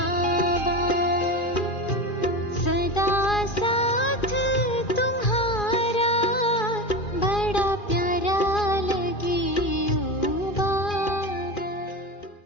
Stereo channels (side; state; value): right; late; 2.4 ms